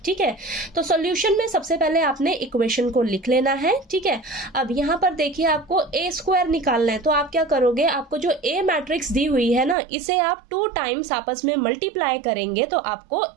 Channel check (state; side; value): drops out; left; at 9.8 s